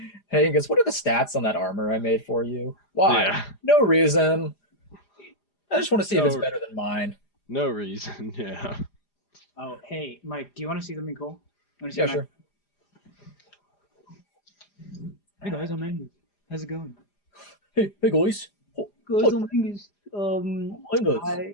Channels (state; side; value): late; right; 4.9 ms